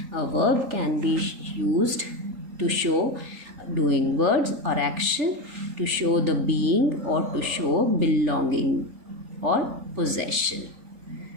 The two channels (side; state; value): left; late; 3.4 ms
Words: a verb can be used to show doing words or action, to show the being, or to show belonging or possession.